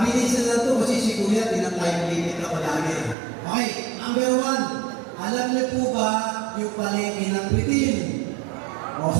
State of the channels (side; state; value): left; drops out; at 3.2 s